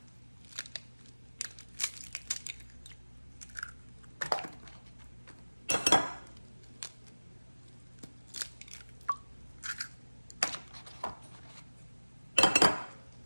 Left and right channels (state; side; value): inverted; both; correlation -1.00